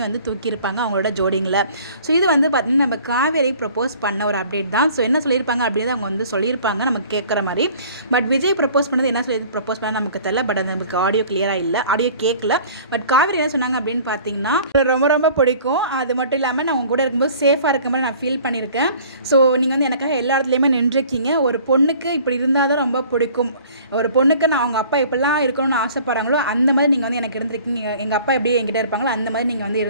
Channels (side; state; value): both; inverted; correlation -0.50